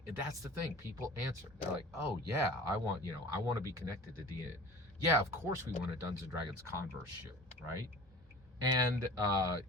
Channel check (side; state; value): both; normal; correlation 0.41